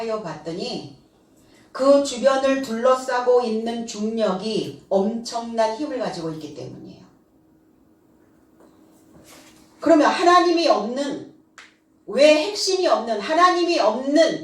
봤더니 그 주변을 둘러싸고 있는 중력이 엄청난 힘을 가지고 있기 때문이에요. 그러면 하나님이 없는, 왜 핵심이 없는, 하나님이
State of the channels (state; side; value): identical; both; correlation 1.00